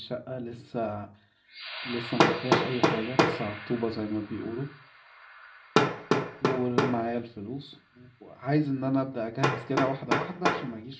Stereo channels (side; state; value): both; identical; correlation 1.00